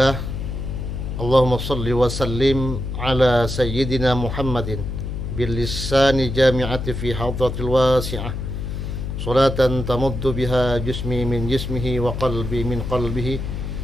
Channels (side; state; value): left; noise; hum, 5 dB below the sound